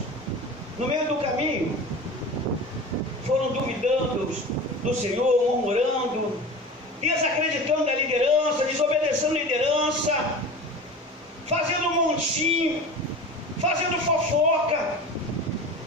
No meio do caminho, foram duvidando do Senhor, murmurando, desacreditando da liderança, desobedecendo a liderança, fazendo montinho, fazendo fofoca.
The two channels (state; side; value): normal; both; correlation 0.34